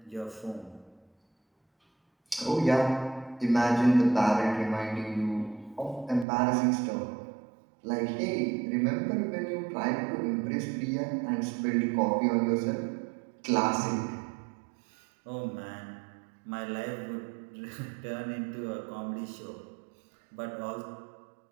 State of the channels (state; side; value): drops out; left; at 6.2 s